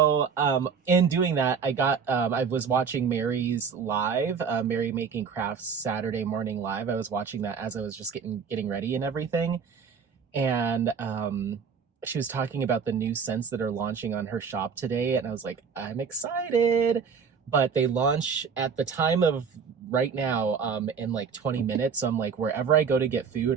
in doing that, I was watching Mary's live, Mary Making Crafts Saturday morning live. I was watching that as I was just getting ready and everything, and she was talking about the new scents that are launching on her shop today, and I was like, I'm excited. But they launch at the time of right now in like 20 minutes. So I'm like, wherever I go to get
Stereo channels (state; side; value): quieter; left; 6.2 dB